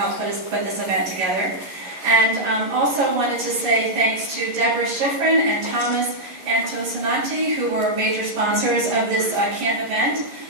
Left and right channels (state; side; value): late; left; 11 ms